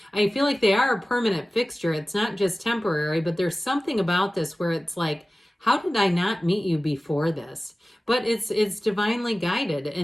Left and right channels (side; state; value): both; normal; correlation 0.97